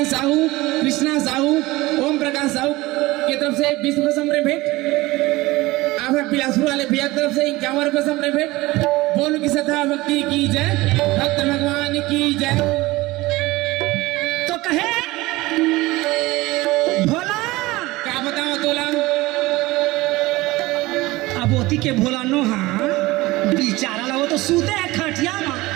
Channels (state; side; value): quieter; left; 19.9 dB